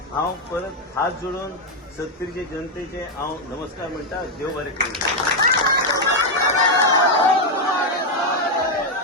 हांव परत हात जोडून 70चे जनतेचे हांव नमस्कार म्हणटा. देव बरें करूं.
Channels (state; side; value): normal; both; correlation 0.02